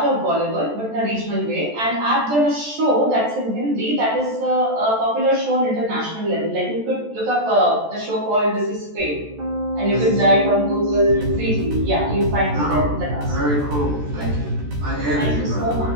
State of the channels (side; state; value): left; late; 14 ms